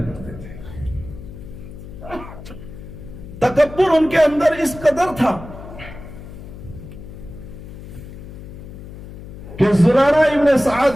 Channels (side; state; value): left; noise; hum, 14 dB below the sound